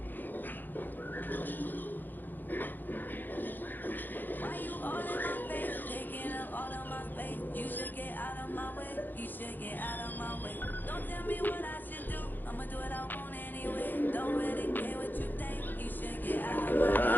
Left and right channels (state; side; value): late; right; 0.088 ms